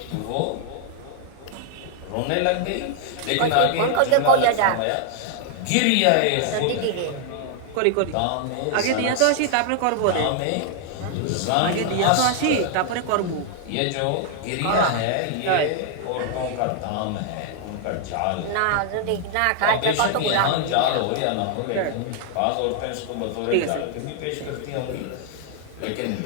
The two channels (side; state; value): both; different; correlation 0.00